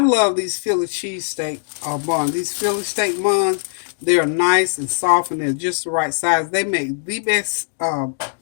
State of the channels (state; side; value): silent; right; digital silence